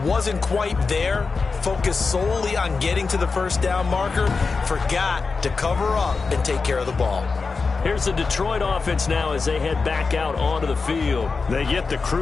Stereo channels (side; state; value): right; quieter; 4.5 dB